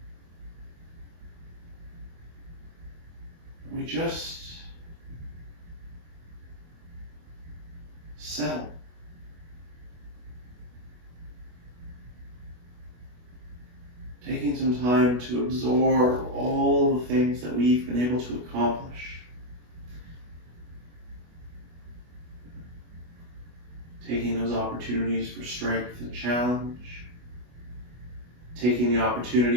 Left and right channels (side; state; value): left; late; 25 ms